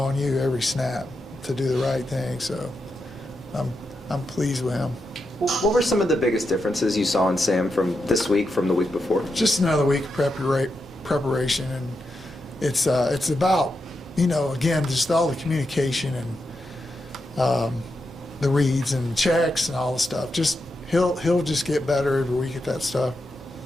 you every snap to do the right thing. So I'm I'm pleased with him. What were some of the biggest differences you saw in Sam from this week from the week before? Just another week of preparation, and it's about, you know, again, just all the communication and the reads and checks and all the stuff. Just he'll just get better every week at that stuff.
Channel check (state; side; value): normal; both; correlation 0.86